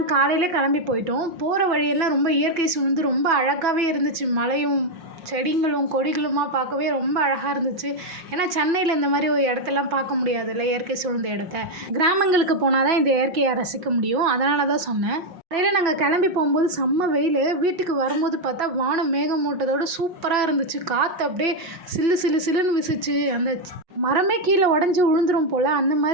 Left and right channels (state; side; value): late; left; 5.6 ms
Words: காலையில் கிளம்பி போயிட்டோம். போகிற வழியெல்லாம் ரொம்ப இயற்கை சூழ்ந்து ரொம்ப அழகாகவே இருந்துச்சு. மலையும் செடிங்களும் கொடிகளுமா பார்க்கவே ரொம்ப அழகாக இருந்துச்சு. ஏன்னா சென்னையில் இந்த மாதிரி ஒரு இடத்தெல்லாம் பார்க்க முடியாதுல்ல, இயற்கை சூழ்ந்த இடத்த. கிராமங்களுக்கு போனால் தான் இந்த இயற்கையை ரசிக்க முடியும். அதனால தான் சொன்னேன். காலையில் நாங்கள் கிளம்பி போகும்போது செம்ம வெயில். வீட்டுக்கு வரும்போது பார்த்தா வானம் மேகமூட்டத்தோடு சூப்பராக இருந்துச்சு. காற்று அப்படியே சில்லு சில்லு சில்லுன்னு வீசிச்சு. அந்த மரமே கீழே உடஞ்சி விழுந்துரும் போல் அந்த